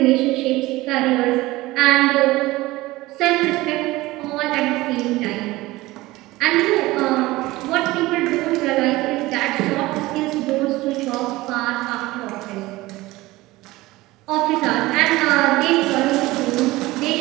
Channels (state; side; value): quieter; left; 19.2 dB